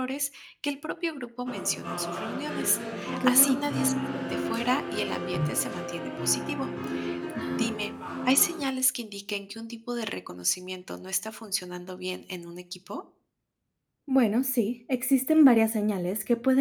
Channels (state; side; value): identical; both; correlation 1.00